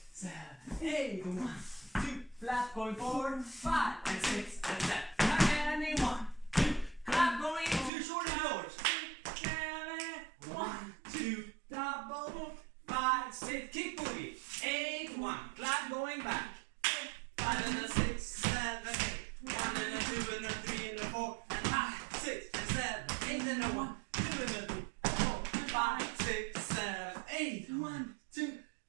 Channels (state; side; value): drops out; left; at 7.9 s